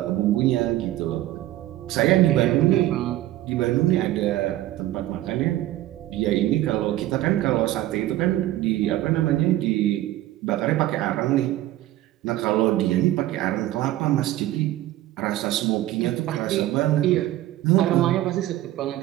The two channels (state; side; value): quieter; left; 14.9 dB